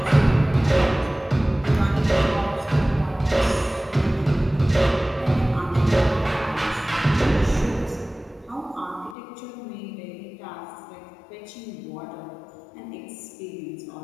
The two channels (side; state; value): right; drops out; at 9.2 s